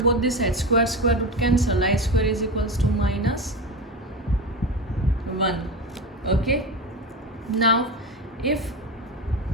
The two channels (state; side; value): normal; both; correlation 0.22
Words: the sides, square root cancel, I square is equals to minus 1. Okay, now if